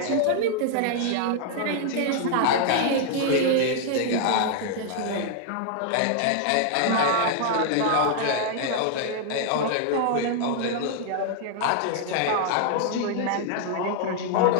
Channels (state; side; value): different; both; correlation 0.00